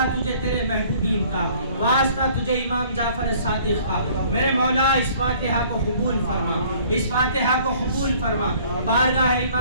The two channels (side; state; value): both; inverted; correlation -0.55